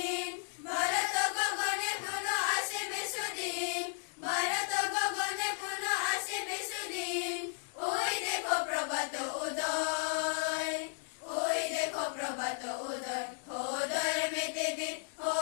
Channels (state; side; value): silent; right; 55 dB below the other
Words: ভারত গগনে পুনঃ আসিবে সুদিন, ভারত গগনে পুনঃ আসিবে সুদিন। ওই দেখো প্রভাত উদয়, ওই দেখো প্রভাত উদয়। ও ধর্মেতে বীর, ও